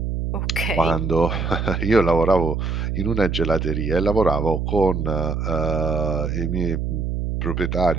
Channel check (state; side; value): noise; right; hum, 2 dB below the sound